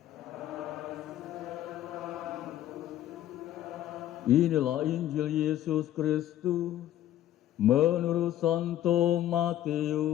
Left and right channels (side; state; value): right; quieter; 12.6 dB